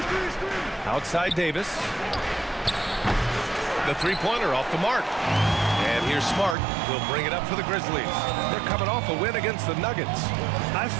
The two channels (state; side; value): drops out; left; at 6.6 s